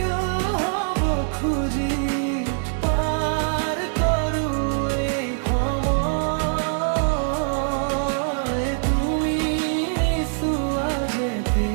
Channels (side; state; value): left; silent; digital silence